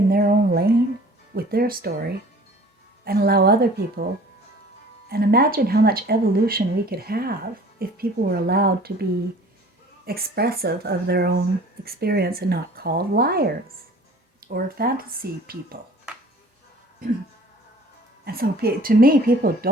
their own lane with their story and allow other people. And imagine how much evolution we could have if people were allowed to be expressive of their own experience and not called liars or fantasy people. And so to me, people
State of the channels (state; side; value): normal; both; correlation 0.49